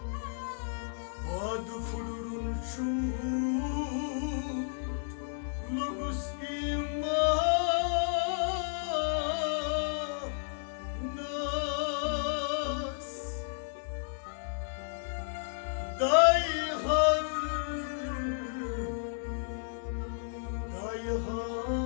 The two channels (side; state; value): right; silent; digital silence